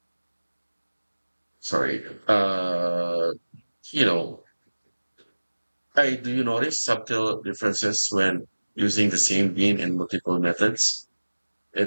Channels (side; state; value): both; inverted; correlation -1.00